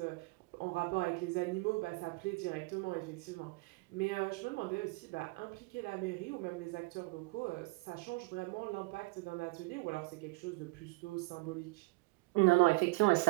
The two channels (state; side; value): quieter; left; 25.2 dB